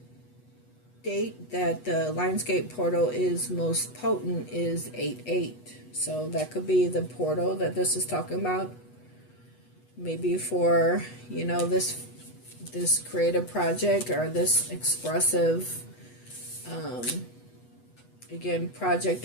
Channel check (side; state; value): right; late; 8.1 ms